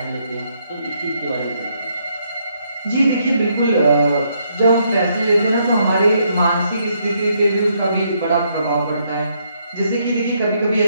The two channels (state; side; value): inverted; both; correlation -0.73